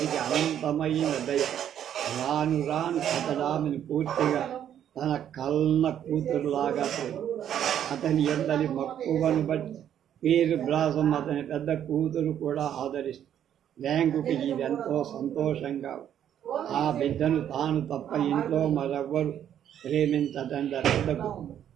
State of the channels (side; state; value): left; quieter; 10.0 dB